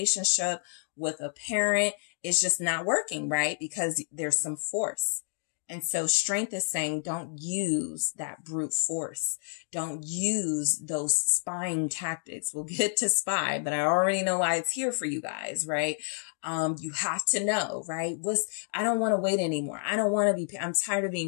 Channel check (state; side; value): silent; right; 58 dB below the other